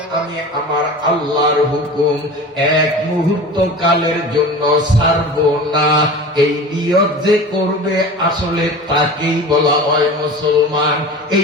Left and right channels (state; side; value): normal; both; correlation 0.35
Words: আমি আমার আল্লাহর হুকুম এক মুহূর্ত কালের জন্য ছাড়ব না, এই নিয়ত যে করবে আসলে তাকেই বলা হয় মুসলমান।